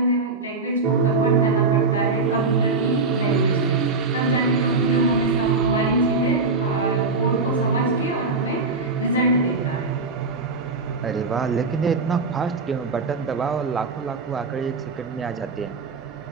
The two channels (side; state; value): left; quieter; 3.9 dB